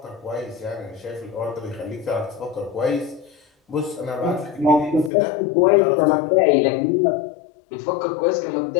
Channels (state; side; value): drops out; right; at 5.1 s